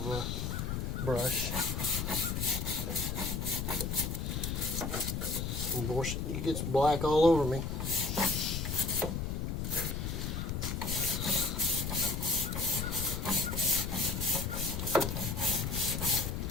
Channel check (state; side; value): noise; left; rumble, 2 dB below the sound